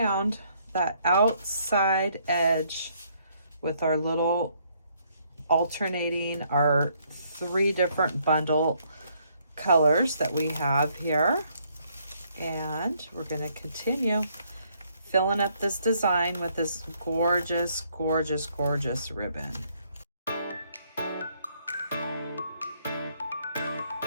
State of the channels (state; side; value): inverted; both; correlation -0.69